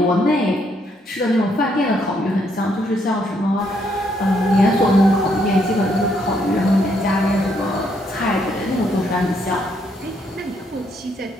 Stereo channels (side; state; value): both; normal; correlation 0.73